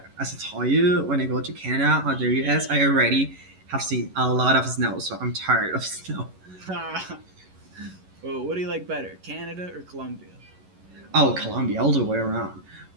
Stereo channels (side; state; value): left; late; 11 ms